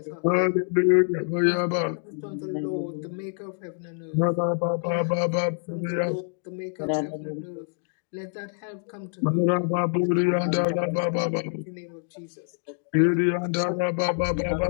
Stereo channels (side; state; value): right; silent; digital silence